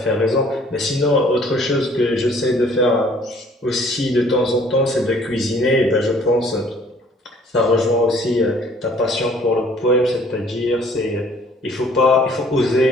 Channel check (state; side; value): normal; both; correlation 0.57